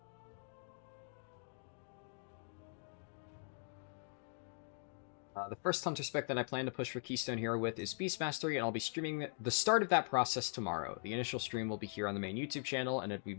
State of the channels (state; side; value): silent; right; digital silence